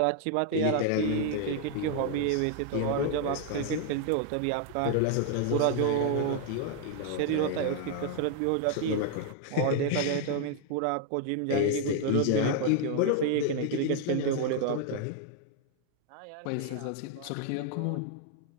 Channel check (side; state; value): both; different; correlation 0.00